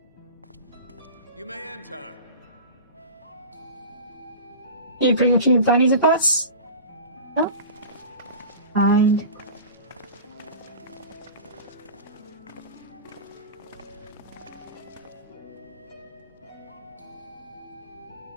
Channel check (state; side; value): inverted; both; correlation -0.34